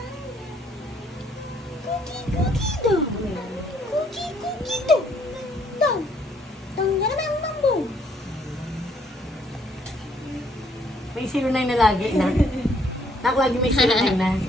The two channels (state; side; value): normal; both; correlation 0.67